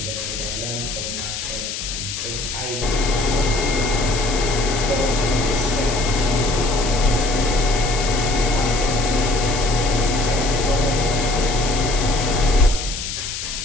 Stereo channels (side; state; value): left; noise; hiss, 6 dB below the sound